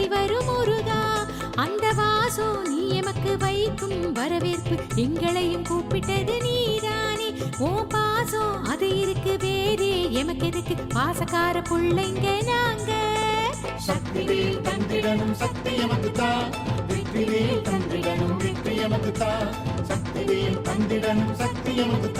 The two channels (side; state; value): both; identical; correlation 1.00